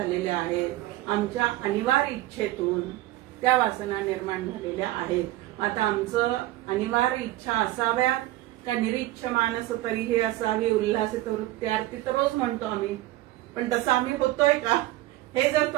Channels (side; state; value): left; quieter; 16.4 dB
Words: आहेत, आमच्या अनिवार्य इच्छेतून त्या वासना निर्माण झालेल्या आहेत. आता आमचं अनिवार्य इच्छा असाव्यात का निरीच्छ मानस तरीही असावी उल्हासित वृत्त्यार्थी, तर रोज म्हणतो आम्ही, पण तसं आम्ही होतोय का हे जर